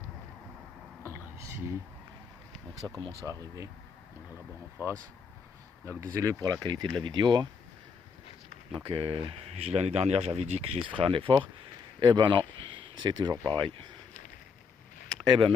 Voilà ici. Donc ça commence à arriver. On a là-bas en face. Donc désolé pour la qualité de la vidéo, hein. Donc l'année dernière j'avais dit que je ferais un effort. Eh ben non, c'est toujours pareil. Eh ben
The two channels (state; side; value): quieter; right; 5.7 dB